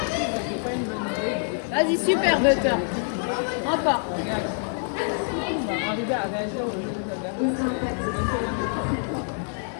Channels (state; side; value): silent; right; 57 dB below the other